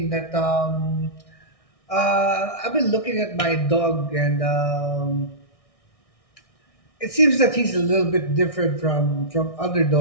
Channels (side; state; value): right; late; 1.6 ms